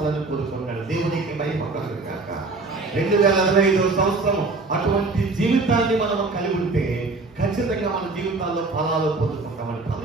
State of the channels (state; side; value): quieter; left; 3.6 dB